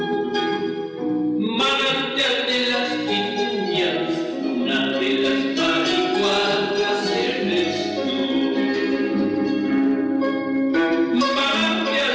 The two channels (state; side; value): identical; both; correlation 1.00